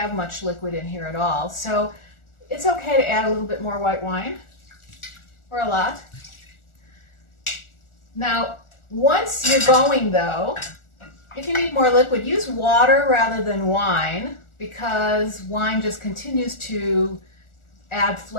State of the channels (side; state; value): right; late; 1.4 ms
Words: much liquid in here at all. So it's okay to add a little bit more white wine, or a lot. Now, once you're going though, if you need more liquid, use water rather than wine, because wine just continues to add